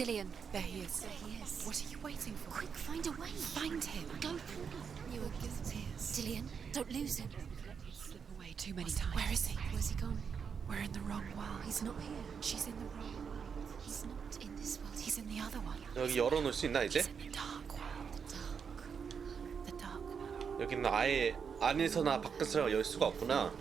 There he is. There he is. What are you waiting for? Quick, find a way. Find him. Go. You are guilty. Dillian, don't lose him. Slip away too many times. Where is he? Where's he gone? We're in the wrong world. He's not here. She's in the wrong world. He's not in this world. He's in the other one. 여기 열어놓을 수 있나 이제? He's in the dark world. The dark. The dark world. 여기는 아예 안에서나 밖에서 열 수가 없구나.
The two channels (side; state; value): left; quieter; 6.5 dB